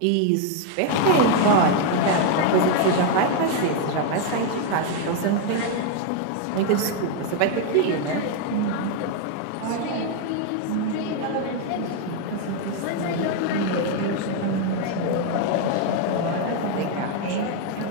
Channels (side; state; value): both; different; correlation 0.00